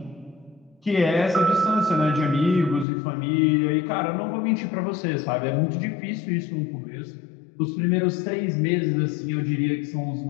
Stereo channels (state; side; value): drops out; right; at 2.9 s